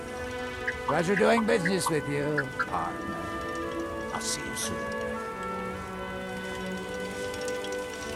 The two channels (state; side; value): identical; both; correlation 1.00